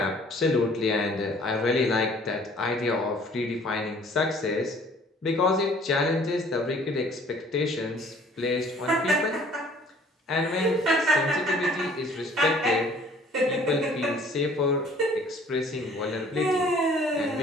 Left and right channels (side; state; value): both; normal; correlation 0.55